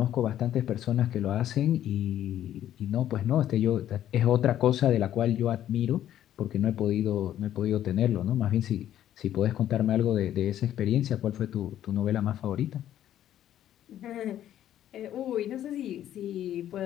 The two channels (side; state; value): right; quieter; 11.6 dB